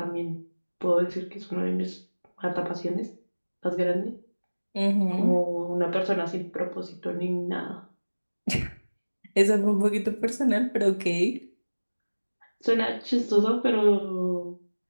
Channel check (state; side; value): inverted; both; correlation -1.00